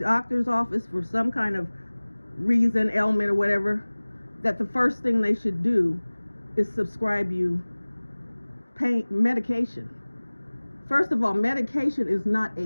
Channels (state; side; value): inverted; both; correlation -1.00